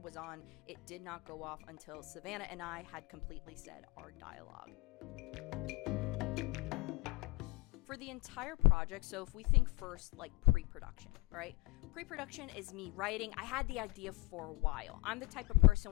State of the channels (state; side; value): quieter; right; 23.2 dB